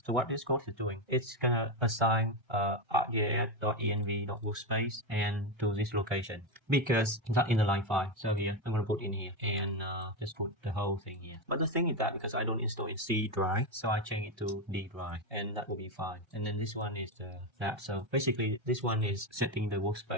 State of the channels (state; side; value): late; left; 1.3 ms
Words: So what this code is doing, it's gonna assign arcgis.env.workspace and to this location because that in the line 5. So here I'm gonna put in here and just put the whole thing here. But the thing is that because I don't install in C drive, so I change it to D drive and that will be fine. And then this one is that. So basically this one is setting the